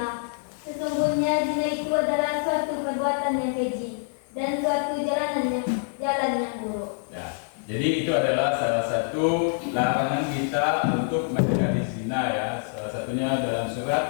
Sesungguhnya zina itu adalah suatu perbuatan yang keji dan suatu jalan yang buruk. Ya, jadi itu adalah salah satu larangan kita untuk mendekati zina ya. Salah satunya dalam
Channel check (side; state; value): right; silent; digital silence